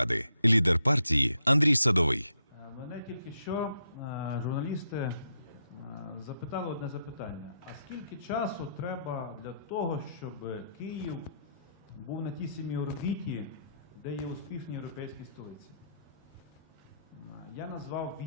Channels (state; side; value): inverted; both; correlation -0.77